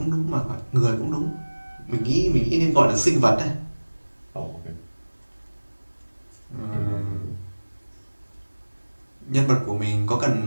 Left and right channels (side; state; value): both; inverted; correlation -1.00